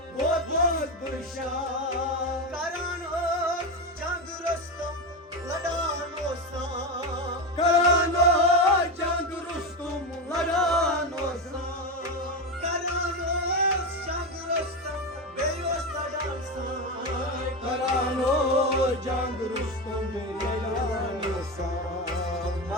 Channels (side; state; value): both; normal; correlation 0.16